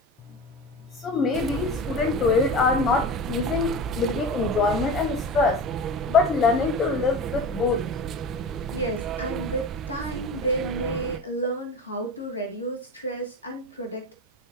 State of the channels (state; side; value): normal; both; correlation 0.30